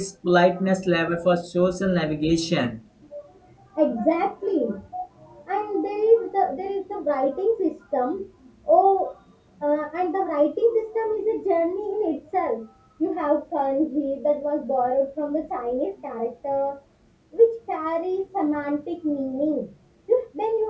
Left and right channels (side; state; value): both; identical; correlation 1.00